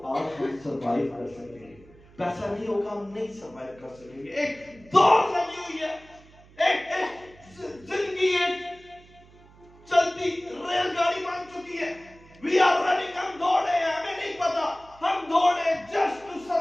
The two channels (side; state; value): right; noise; hum, 25 dB below the sound